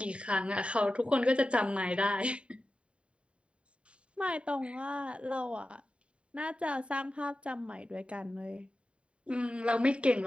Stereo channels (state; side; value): late; left; 0.059 ms